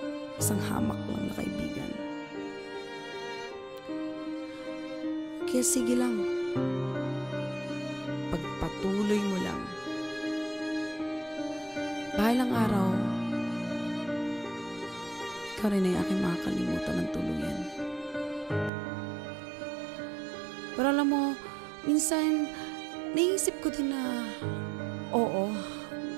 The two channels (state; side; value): drops out; left; at 18.7 s